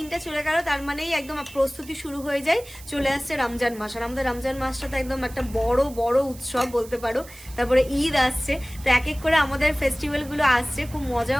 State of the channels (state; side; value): noise; right; hiss, 19 dB below the sound